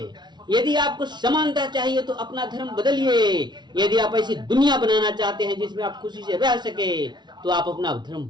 यदि आपको समानता चाहिए तो अपना धर्म बदलिए। यदि आप ऐसी दुनिया बनाना चाहते हैं जिसमें आप खुशी से रह सके तो आप अपना धर्म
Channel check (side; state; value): left; late; 0.21 ms